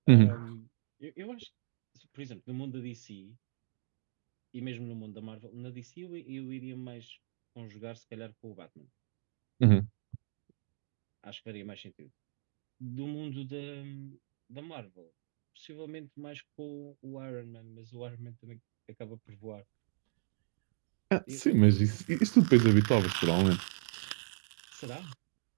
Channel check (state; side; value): silent; left; digital silence